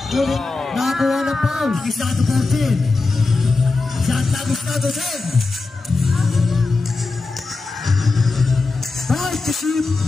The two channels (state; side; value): quieter; right; 3.7 dB